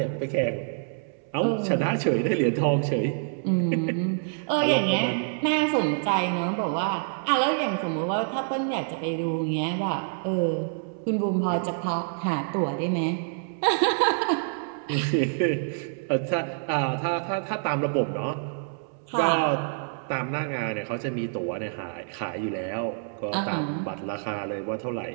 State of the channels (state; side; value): silent; left; 60 dB below the other